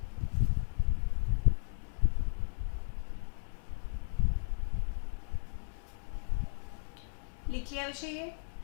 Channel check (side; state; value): right; silent; digital silence